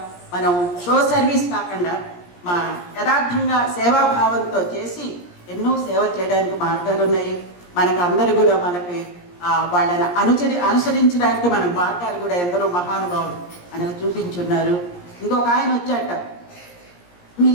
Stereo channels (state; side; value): late; right; 17 ms